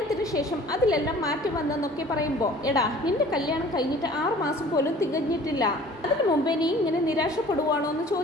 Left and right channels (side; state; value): both; normal; correlation 0.48